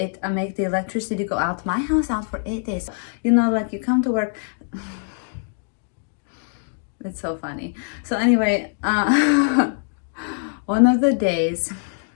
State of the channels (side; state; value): right; silent; 63 dB below the other